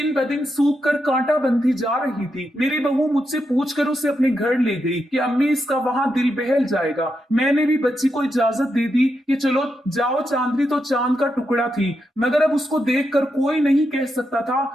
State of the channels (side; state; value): both; normal; correlation 0.84